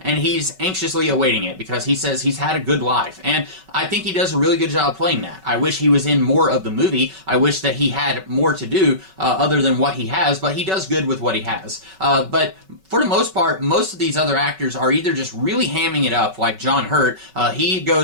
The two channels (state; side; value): late; left; 5.3 ms